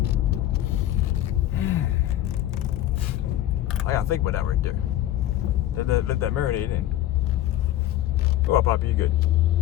I gotta think about that right there. Let that marinate in. Go up, Poppy, you good.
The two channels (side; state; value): right; quieter; 13.4 dB